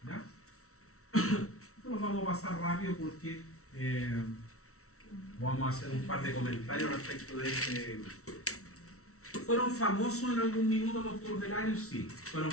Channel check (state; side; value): late; right; 0.63 ms